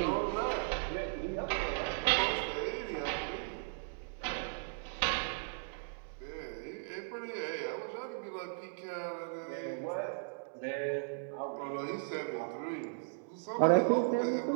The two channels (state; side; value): silent; left; digital silence